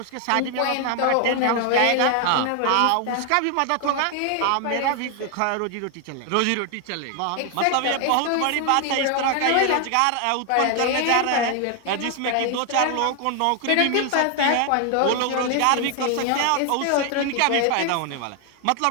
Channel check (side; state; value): both; different; correlation 0.00